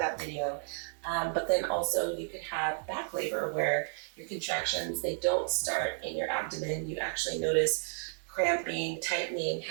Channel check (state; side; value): silent; left; 56 dB below the other